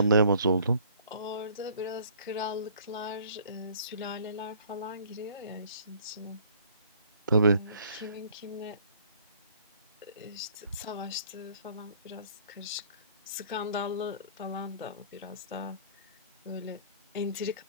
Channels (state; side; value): inverted; both; correlation -0.55